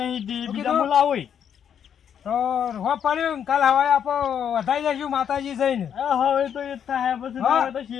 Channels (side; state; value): right; quieter; 8.5 dB